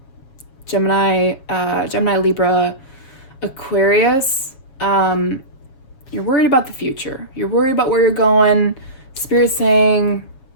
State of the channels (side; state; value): right; late; 7.2 ms